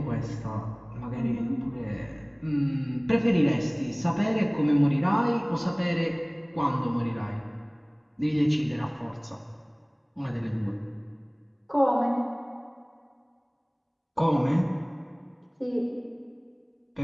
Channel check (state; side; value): identical; both; correlation 1.00